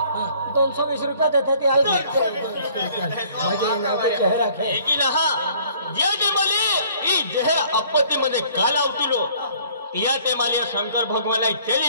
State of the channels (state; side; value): inverted; both; correlation -0.57